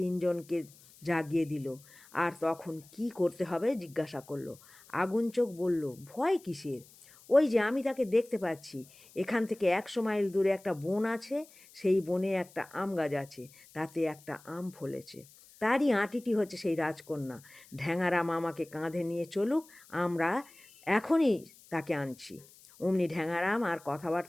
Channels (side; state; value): left; noise; hiss, 24 dB below the sound